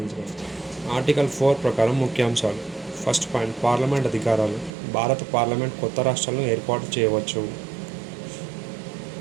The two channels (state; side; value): drops out; left; at 4.7 s